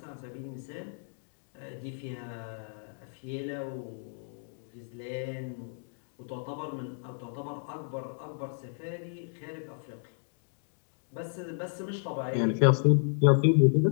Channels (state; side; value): silent; right; digital silence